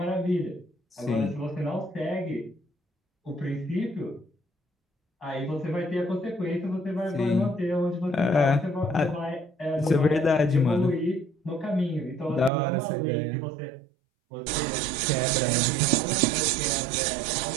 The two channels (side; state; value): left; drops out; at 12.5 s